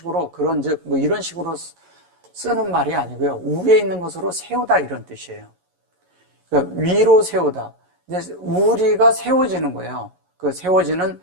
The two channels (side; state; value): left; late; 11 ms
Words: 그런즉, 뭐 이런 식으로 쓰는 말이 아니고요. 위에 있는 것으로 세우다 이런 뜻이에요. 그러니까 위로 세우다. 이제 우리가 세워지는 거예요. 그 세워지는